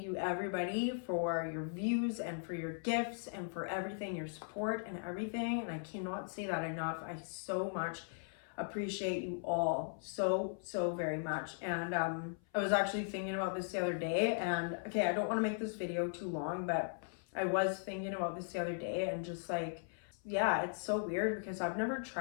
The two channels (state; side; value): silent; right; 52 dB below the other